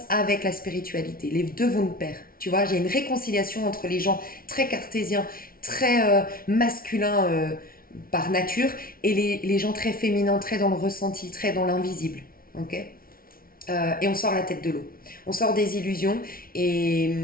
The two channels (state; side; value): late; right; 0.43 ms